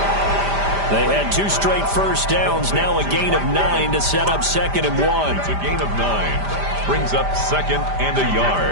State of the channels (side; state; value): left; late; 5.0 ms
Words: They had 2 straight first downs. Now a gain of 9 to set up 2nd and 1. It's a gain of 9. Brings up 2nd and a